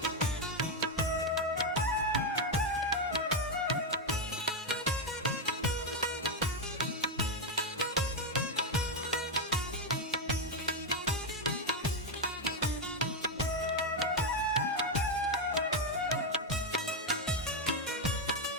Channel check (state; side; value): normal; both; correlation 0.04